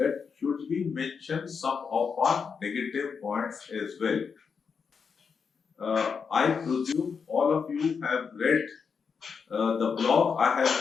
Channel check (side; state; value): right; quieter; 5.9 dB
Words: should we mention some of our negative points as well. I presume all of you have read the blog I have